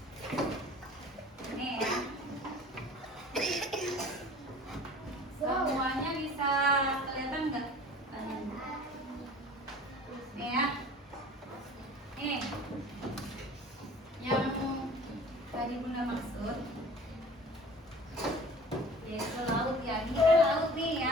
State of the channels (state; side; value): normal; both; correlation 0.44